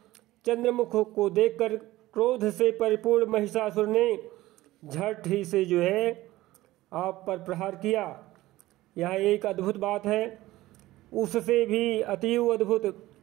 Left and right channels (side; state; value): left; quieter; 17.0 dB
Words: चंद्रमुख को देखकर क्रोध से परिपूर्ण महिषासुर ने झट ही से जो है आप पर प्रहार किया। यह एक अद्भुत बात है। उससे भी अतीव अद्भुत